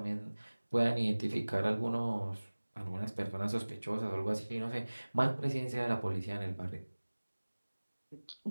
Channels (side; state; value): both; inverted; correlation -1.00